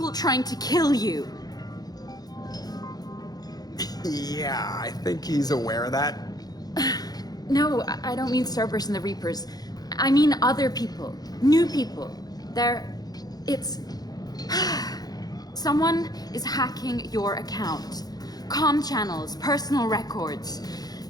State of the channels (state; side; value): late; right; 0.19 ms